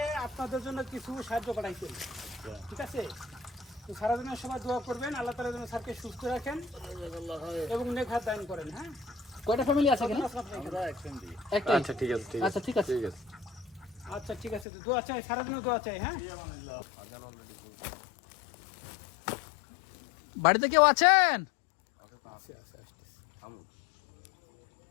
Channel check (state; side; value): drops out; right; at 14.7 s